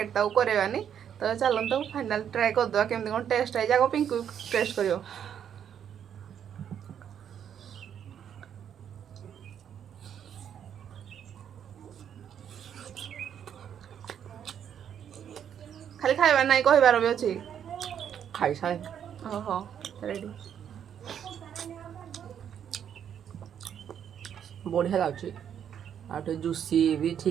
तो करानी तो चलतु फाइनाल ट्राए करदे केमती कौन टेस्ट है जाक पिंकु टेस्ट कर खाली खाइबार ना कहबार भी अच्छी खाई सारे ओहो रेडी बढ़िया लाଗୁଛି आटे जूसी भी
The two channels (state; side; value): quieter; left; 8.9 dB